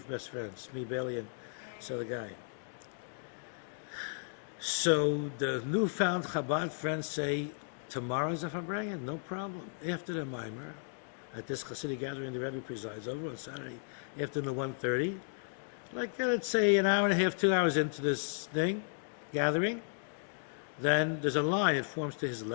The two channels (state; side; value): silent; right; digital silence